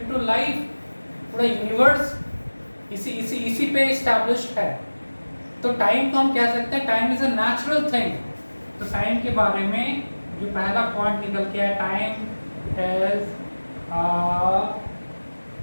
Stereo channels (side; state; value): both; inverted; correlation -1.00